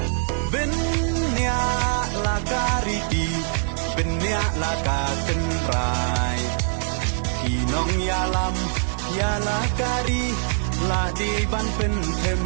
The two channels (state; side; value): silent; left; digital silence